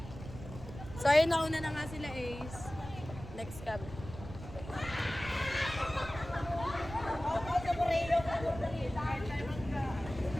So ayun, nauna na nga sila Ace. Next cab.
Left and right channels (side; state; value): right; noise; rumble, 12 dB below the sound